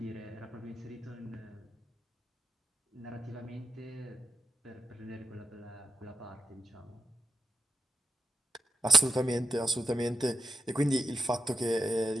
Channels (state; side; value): normal; both; correlation 0.86